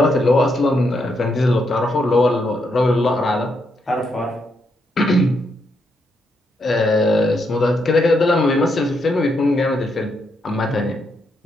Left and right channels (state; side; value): normal; both; correlation 0.79